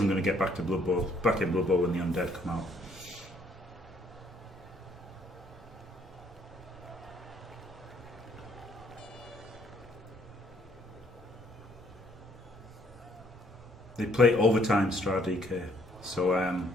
get back in Blood Bowl when the Undead come out. They play overtime Stra DK, so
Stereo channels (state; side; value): normal; both; correlation 0.66